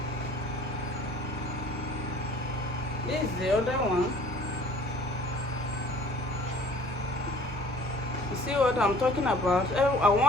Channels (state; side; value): normal; both; correlation 0.51